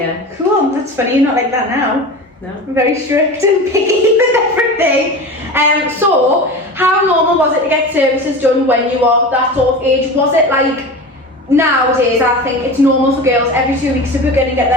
Cool, that's funny, you're not like that now. No. I'm very strict and picky with everything. So, how normal was it to get services done when you were that sort of age? Was it like, nowadays I think it's normal for girls every 2 weeks to book in and get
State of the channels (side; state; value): both; normal; correlation 0.31